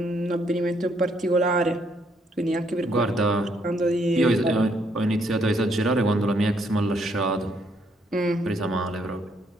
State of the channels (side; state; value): both; normal; correlation 0.71